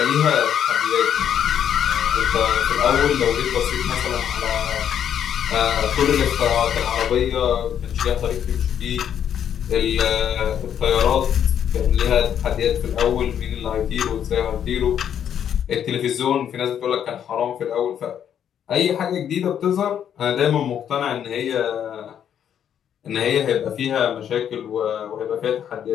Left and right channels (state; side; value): quieter; right; 9.2 dB